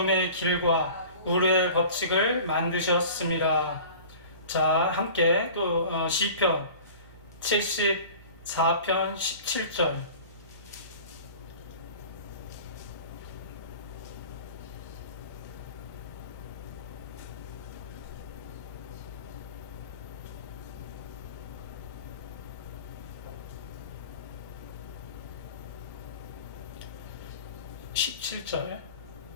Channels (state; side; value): inverted; both; correlation -0.41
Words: 길과 우르의 법칙을 만드셨습니다. 자, 함께 또 시편 74편 17절.